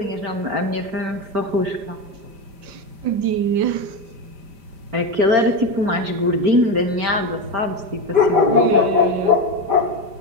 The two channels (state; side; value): late; left; 5.1 ms